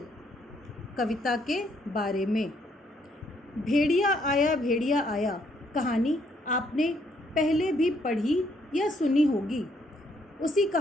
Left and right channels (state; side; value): normal; both; correlation 0.70